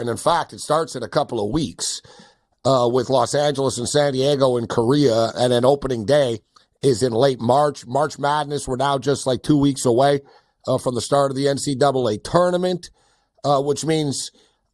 in fact, it starts in a couple of weeks with Los Angeles and San Diego and Korea. And then opening day is in late March. March Madness, we're now just like 2 weeks away from the start of the NCAA tournament. Which means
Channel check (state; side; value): identical; both; correlation 1.00